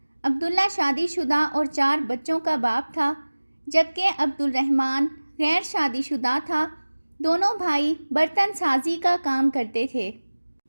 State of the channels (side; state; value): both; inverted; correlation -1.00